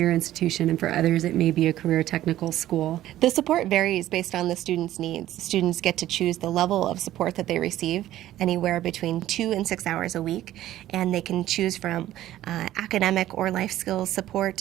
institution, and for others, it may be a career technical school. The support varies based on the student's needs. Students get to choose the level of support that they receive, anywhere between 2 and 6 hours a week, and they can choose from academic or life skills support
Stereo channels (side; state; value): left; quieter; 13.8 dB